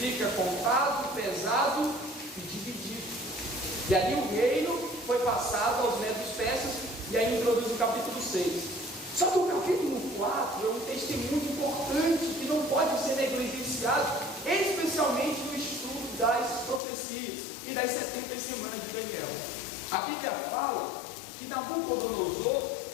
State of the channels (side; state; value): right; drops out; at 16.8 s